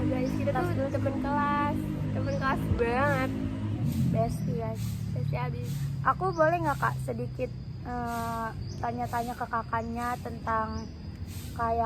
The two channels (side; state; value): both; identical; correlation 1.00